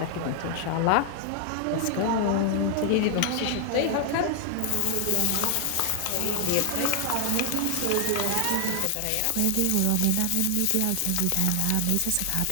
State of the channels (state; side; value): different; both; correlation 0.00